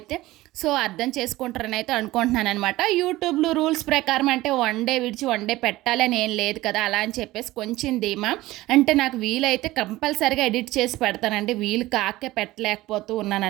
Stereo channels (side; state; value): left; quieter; 17.7 dB